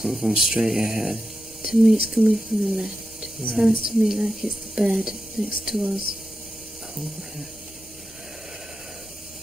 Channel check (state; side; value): normal; both; correlation 0.90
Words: from straight ahead. To me, it's coming from the left. It Right. sounds to me like it's the bed next to us. Oh, yeah.